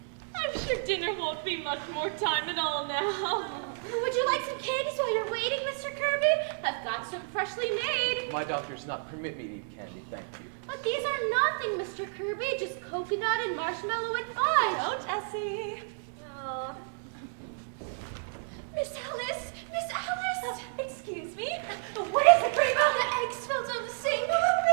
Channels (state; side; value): silent; left; digital silence